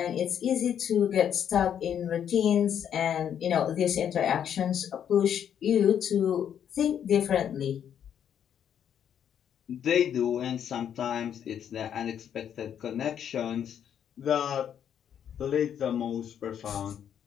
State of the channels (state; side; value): quieter; right; 9.0 dB